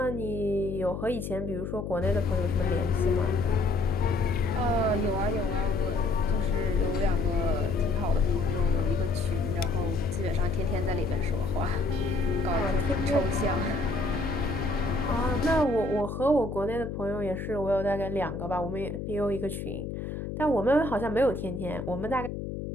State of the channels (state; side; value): noise; left; hum, 6 dB below the sound